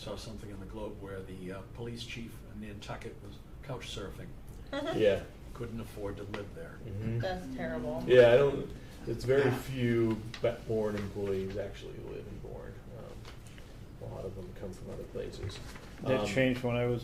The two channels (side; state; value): both; identical; correlation 1.00